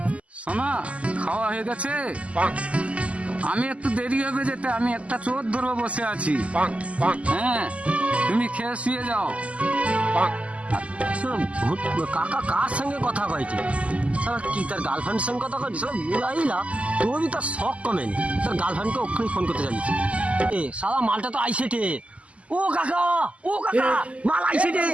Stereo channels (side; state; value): left; late; 0.064 ms